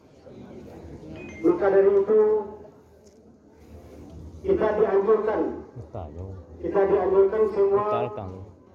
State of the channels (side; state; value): both; identical; correlation 1.00